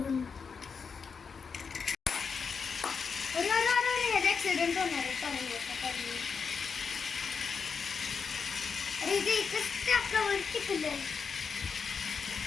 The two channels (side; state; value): right; quieter; 5.7 dB